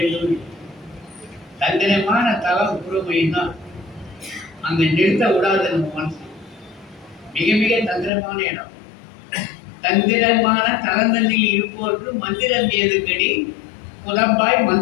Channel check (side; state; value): right; drops out; at 8.1 s